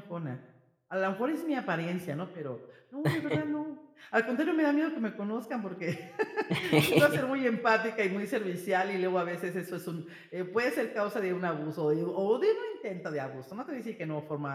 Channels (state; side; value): identical; both; correlation 1.00